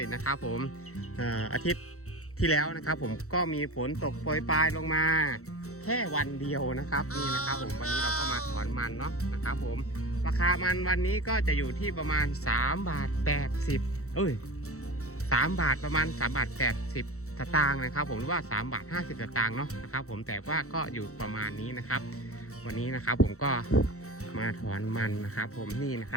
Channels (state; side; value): late; right; 0.64 ms